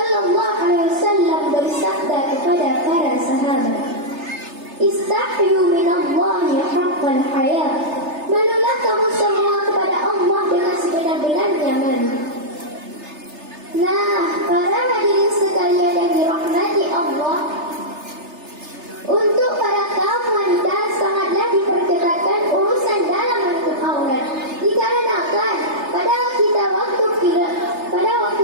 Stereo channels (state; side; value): late; left; 3.3 ms